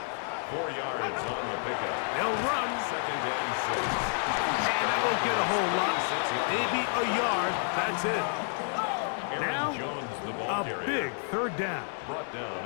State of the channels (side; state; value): right; silent; 55 dB below the other